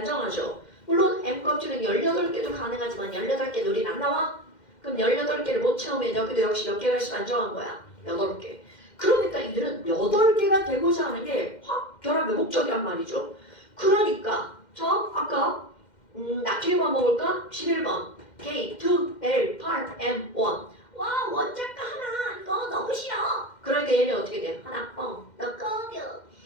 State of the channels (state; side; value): late; right; 2.1 ms